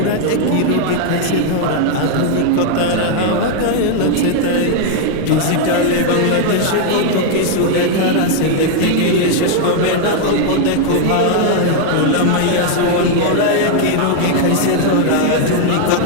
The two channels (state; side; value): different; both; correlation 0.00